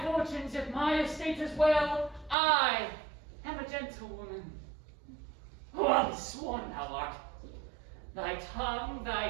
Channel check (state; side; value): drops out; left; at 2.4 s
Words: fortunes, if my estate is well, I am a gentlewoman. Well sworn thou art. Thy tongue,